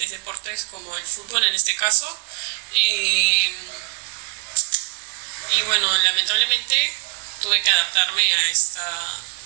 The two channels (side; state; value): left; quieter; 34.5 dB